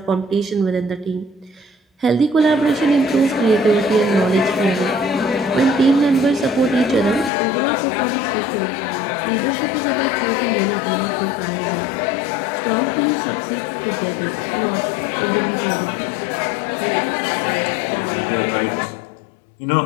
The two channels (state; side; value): drops out; right; at 7.3 s